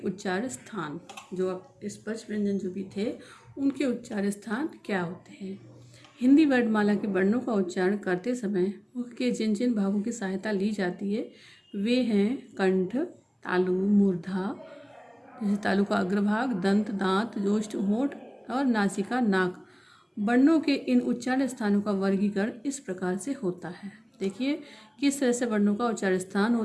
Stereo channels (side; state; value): both; identical; correlation 1.00